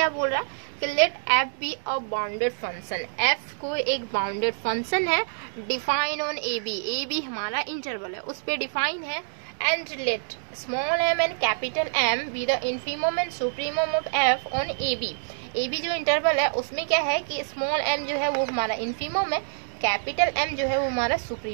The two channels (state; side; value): silent; left; digital silence